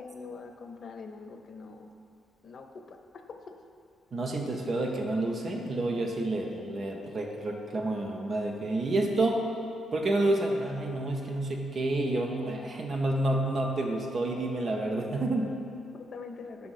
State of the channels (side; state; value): both; normal; correlation 0.82